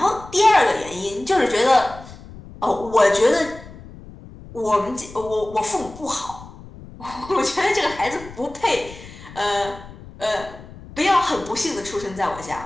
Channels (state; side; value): noise; left; rumble, 17 dB below the sound